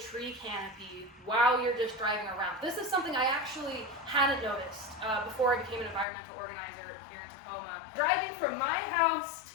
canopy while you're just driving around. This is something I actually hadn't noticed before I became an environmental organizer here in Tacoma. Driving from my house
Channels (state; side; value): drops out; right; at 6.1 s